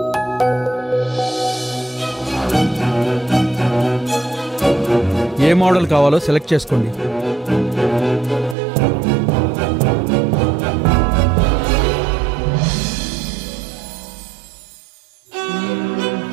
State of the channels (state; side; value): drops out; left; at 8.6 s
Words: ఏ మోడల్ కావాలో సెలెక్ట్ చేసుకోండి.